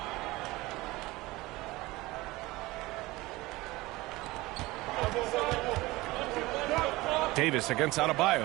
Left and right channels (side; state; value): left; quieter; 20.3 dB